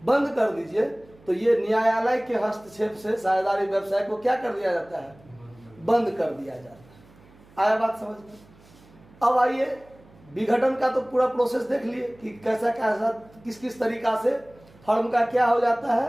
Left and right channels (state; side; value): noise; right; hum, 26 dB below the sound